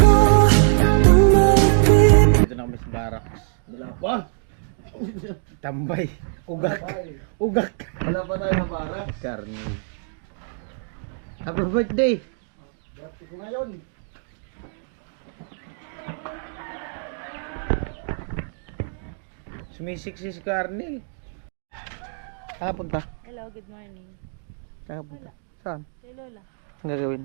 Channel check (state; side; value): silent; left; 63 dB below the other